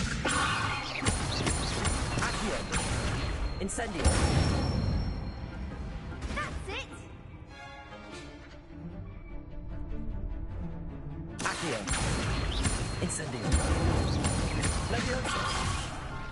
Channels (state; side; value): identical; both; correlation 1.00